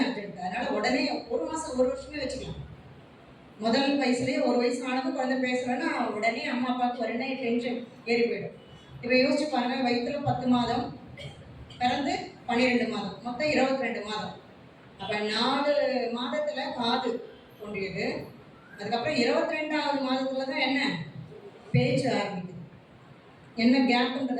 அர்ஜென்ட். அதனால உடனே 1 மாசம் 1 வருஷமே வச்சுக்கலாம். முதல் வயசுலேயே 1 வயசு ஆனது குழந்தை பேசலன்னா உடனே அம்மா அப்பாவுக்கு உடனே டென்ஷன் ஏறி போயிடும். இப்போ யோசிச்சு பாருங்க, வயிற்றுல 10 மாதம், பிறந்து 12 மாதம், மொத்தம் 22 மாதம். அப்போ 4 மாதத்துல காது தோன்றியது. அதுக்கப்புறம் 22வது மாதத்துல தான் என்ன பேச்சு ஆரம்பிக்குது. என்ன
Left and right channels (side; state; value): both; identical; correlation 1.00